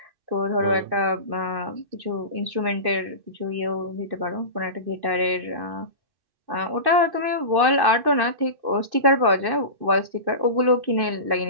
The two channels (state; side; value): late; left; 2.5 ms